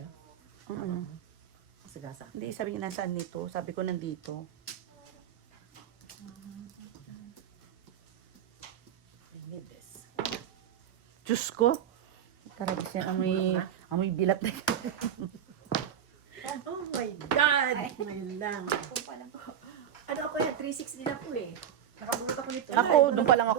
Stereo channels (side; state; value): left; quieter; 9.5 dB